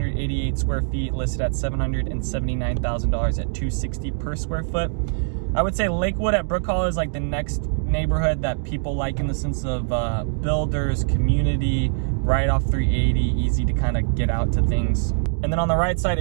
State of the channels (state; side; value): silent; left; digital silence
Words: square feet, listed at $779,000 at $260 per square foot. I would say Lakewood at Brook Hollow is like the next neighborhood that people like in the sense of builders, community, right off 380, easy to kind of get out to things. And then on the right side